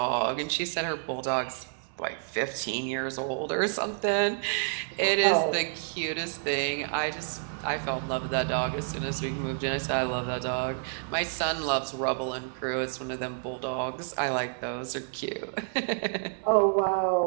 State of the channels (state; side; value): silent; left; digital silence